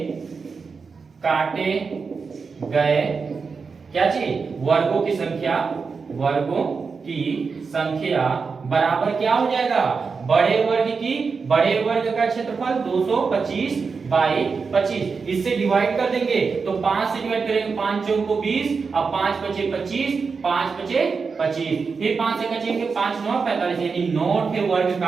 काटे गए क्या चीज वर्गों की संख्या, वर्गों की संख्या बराबर क्या हो जाएगा बड़े वर्ग की, बड़े वर्ग का क्षेत्रफल 225 बाई 25, इससे डिवाइड कर देंगे तो 5 से डिवाइड करेंगे 5 चौक को 20, अब 5 बचे 25, 5 बचे 25, फिर 5 से कटेंगे 5 9 45 यानी 9 के वर्ग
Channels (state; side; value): quieter; left; 5.1 dB